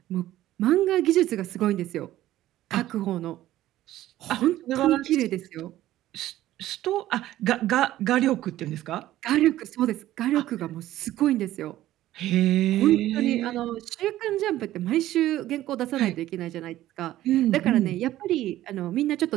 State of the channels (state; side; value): quieter; left; 14.3 dB